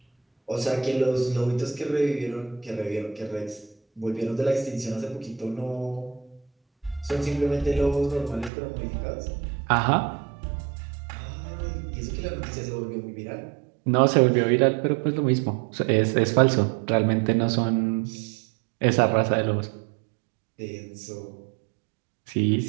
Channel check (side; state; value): left; drops out; at 8.5 s